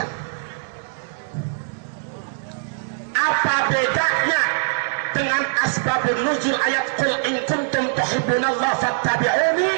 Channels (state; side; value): silent; left; digital silence